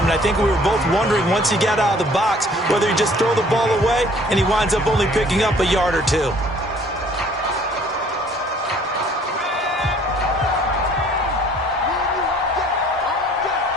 And I think we were both wondering once he got out of the box whether he just throw the ball away and he winds up only picking up a yard or two.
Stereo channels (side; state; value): both; normal; correlation 0.56